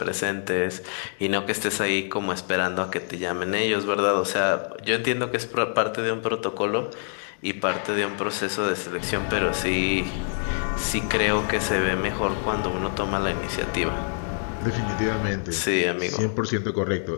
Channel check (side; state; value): right; silent; 61 dB below the other